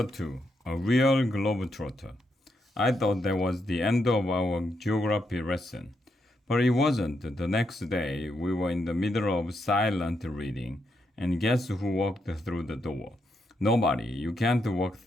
2 A Real Globetrotter. I thought that was the end of our geography lesson. But it wasn't. The next day, we were in the middle of silent reading, and guess who walked through the door? Nobody. You can't walk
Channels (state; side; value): normal; both; correlation 0.80